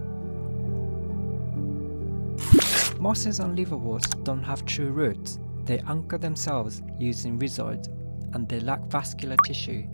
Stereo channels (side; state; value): both; inverted; correlation -1.00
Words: Mosses and liverworts don't have true roots. They anchor themselves using rhizoids, and they lack vascular tissue,